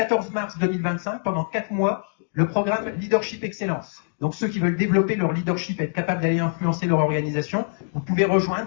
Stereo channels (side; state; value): right; silent; digital silence